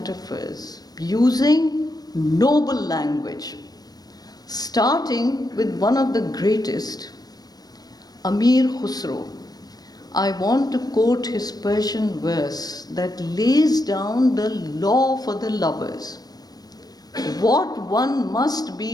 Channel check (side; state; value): right; late; 0.19 ms